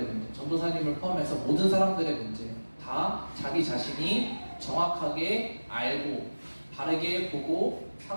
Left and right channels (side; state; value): both; inverted; correlation -1.00